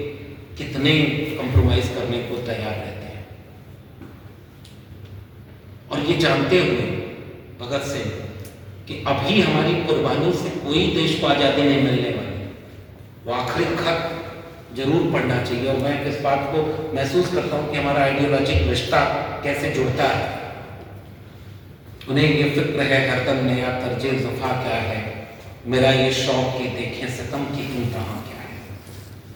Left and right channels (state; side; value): identical; both; correlation 1.00